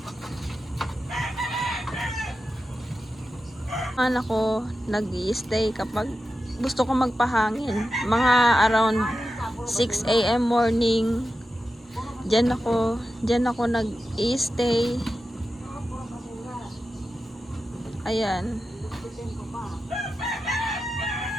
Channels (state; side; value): normal; both; correlation 0.91